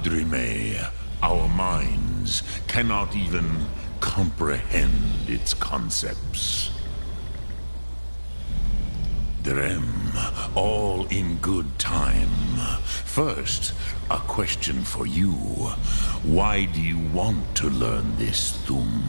our minds, cannot even comprehend its concepts. Drem, all in good time. First, a question for you. Why do you want to learn this Thum?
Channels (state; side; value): inverted; both; correlation -1.00